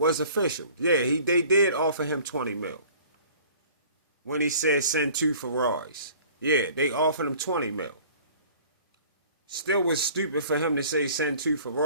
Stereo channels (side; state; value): both; inverted; correlation -0.49